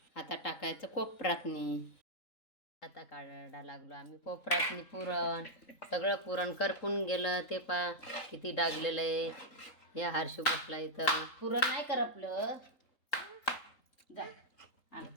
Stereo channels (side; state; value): right; late; 3.8 ms